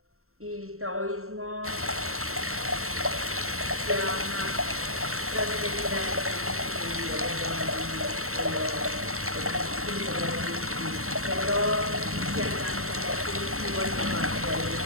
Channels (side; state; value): left; late; 0.63 ms